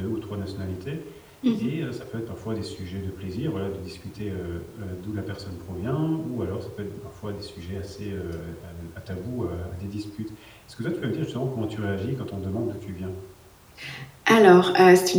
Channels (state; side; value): identical; both; correlation 1.00